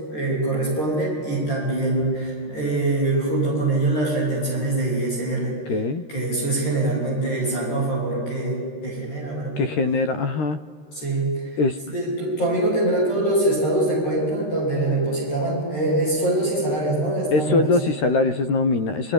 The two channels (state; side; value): late; right; 13 ms